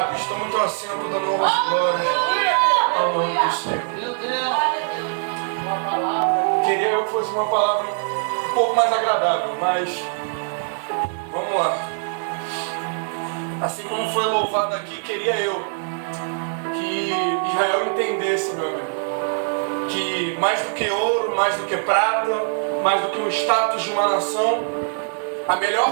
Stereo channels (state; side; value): silent; left; 61 dB below the other